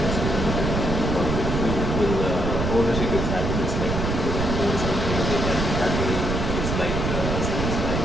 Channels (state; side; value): noise; right; rumble, 1 dB below the sound